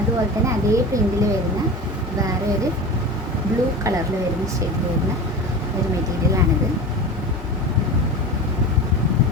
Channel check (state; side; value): normal; both; correlation 0.30